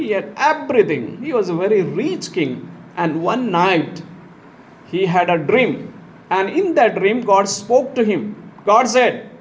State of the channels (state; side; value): identical; both; correlation 1.00